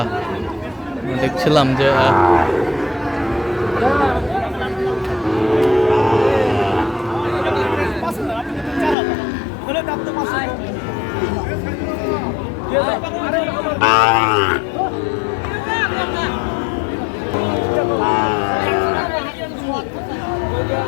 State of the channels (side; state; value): right; drops out; at 9.0 s